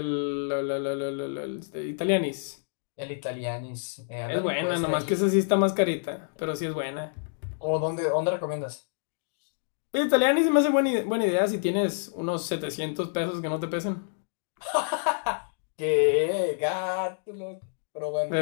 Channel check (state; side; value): silent; right; digital silence